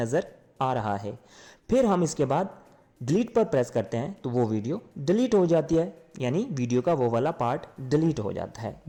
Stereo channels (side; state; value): both; identical; correlation 1.00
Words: आ रहा है। फिर हम इसके बाद डिलीट पर प्रेस करते हैं तो वो वीडियो डिलीट हो जाती है, यानी वीडियो का वो वाला पार्ट डिलीट हो जाता है,